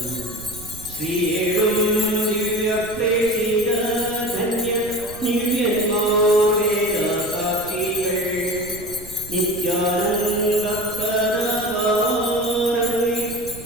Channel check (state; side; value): noise; right; rumble, 16 dB below the sound